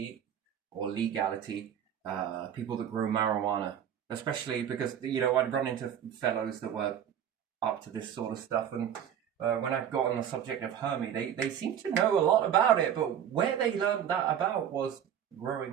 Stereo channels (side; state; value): left; quieter; 9.4 dB